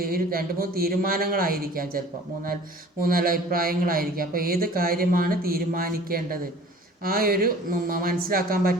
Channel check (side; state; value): both; normal; correlation 0.47